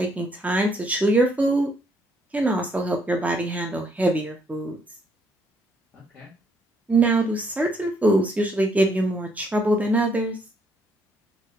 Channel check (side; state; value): both; normal; correlation 0.70